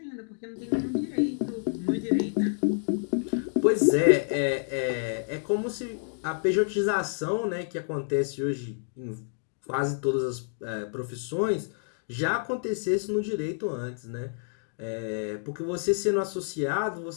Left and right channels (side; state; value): right; silent; digital silence